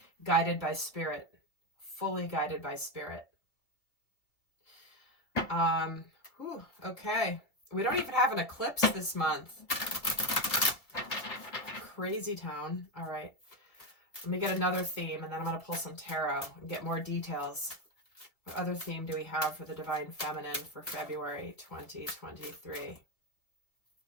Guided by spirit, fully guided by spirit. Okay. We don't even have an eclipse this month. Crazy town. All right. Let me get another theme, and then I'm going to pull some tarot and get more details. What other theme do we have for the Divine Feminine for February 2023?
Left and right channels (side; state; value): right; late; 2.2 ms